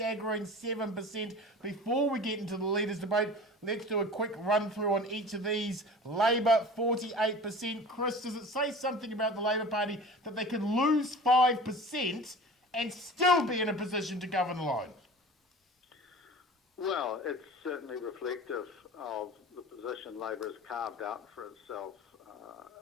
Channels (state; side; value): normal; both; correlation 0.38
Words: 7%. Before we get into the Leaders Debate, let's do a quick run through on each of these. Labour, 48%. Chris, does it say something about the Labour Party that they can lose 5% and still be in a position to govern alone? Well, it's certainly reflective of the position Labour has carved out for itself